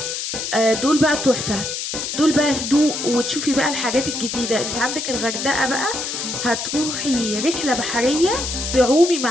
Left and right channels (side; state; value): left; noise; hiss, 4 dB below the sound